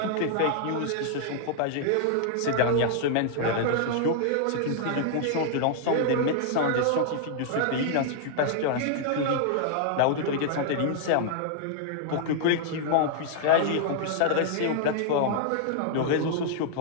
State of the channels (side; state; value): both; different; correlation -0.01